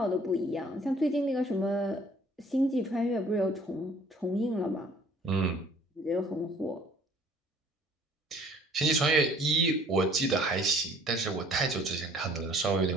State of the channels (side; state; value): both; normal; correlation 0.55